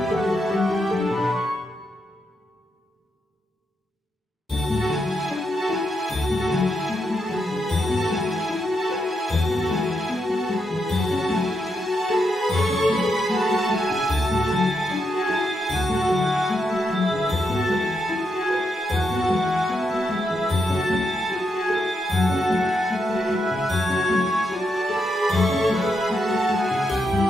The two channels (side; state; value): both; normal; correlation 0.82